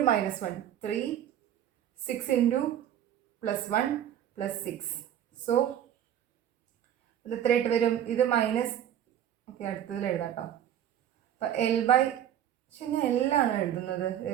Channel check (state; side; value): quieter; left; 10.6 dB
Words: -1 3, 6 × +1 +6. സോ ഇത് എത്രയായിട്ട് വരും, ഇത് മൈനസ്. ഓക്കെ, അടുത്തതിൽ എഴുതാം കേട്ടോ. അപ്പം പക്ഷെ ഞാൻ എല്ലാണ് എഴുതുന്നത്,